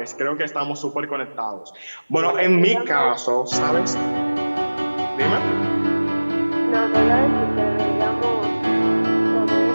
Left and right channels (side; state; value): both; inverted; correlation -1.00